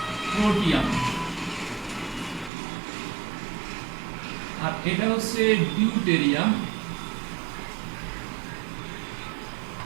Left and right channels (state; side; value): drops out; left; at 2.5 s